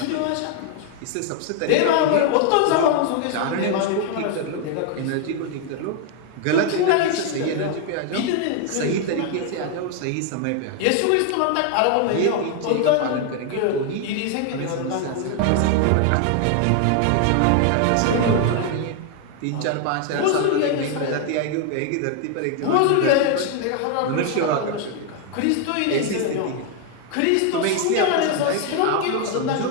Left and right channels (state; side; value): different; both; correlation 0.01